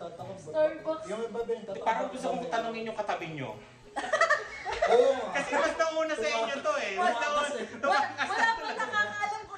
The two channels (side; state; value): both; identical; correlation 1.00